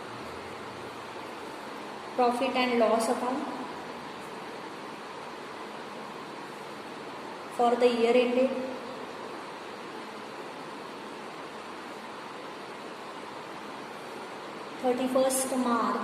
profit and loss account for the year ended 31st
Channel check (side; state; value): both; identical; correlation 1.00